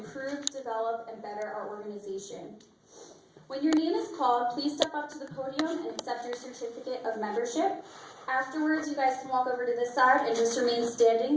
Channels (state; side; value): identical; both; correlation 1.00